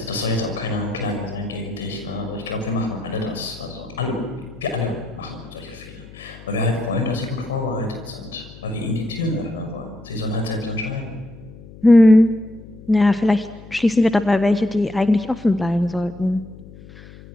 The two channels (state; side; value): noise; left; hum, 18 dB below the sound